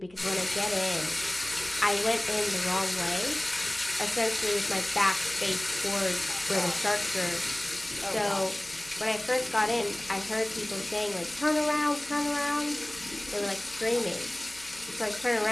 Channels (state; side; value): noise; left; hum, 28 dB below the sound